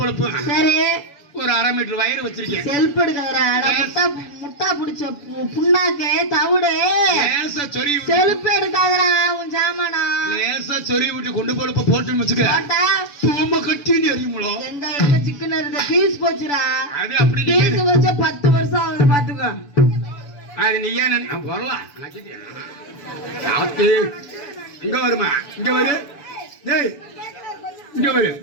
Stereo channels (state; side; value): late; right; 6.9 ms